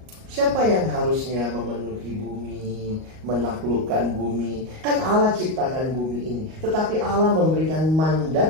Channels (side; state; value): left; late; 38 ms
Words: Siapa yang harusnya memenuhi bumi, menaklukkan bumi? Kan Allah ciptakan bumi ini. Tetapi Allah memberikan